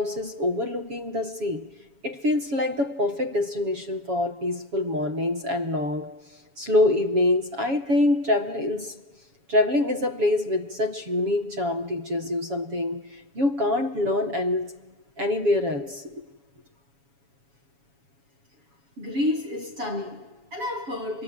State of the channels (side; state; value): left; late; 7.2 ms